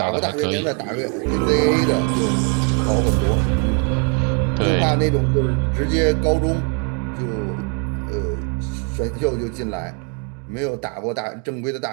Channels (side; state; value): left; quieter; 38.2 dB